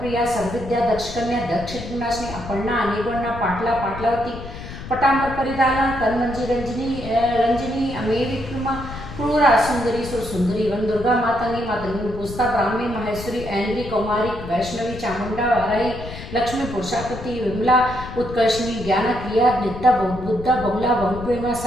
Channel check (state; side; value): noise; left; rumble, 11 dB below the sound